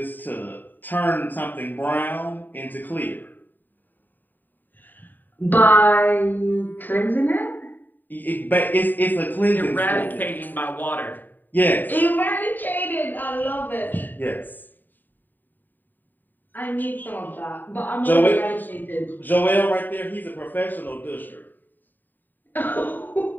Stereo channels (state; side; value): late; right; 0.090 ms